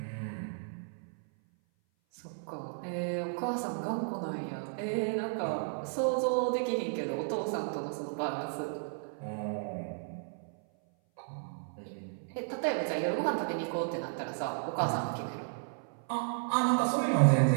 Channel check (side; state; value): left; silent; 55 dB below the other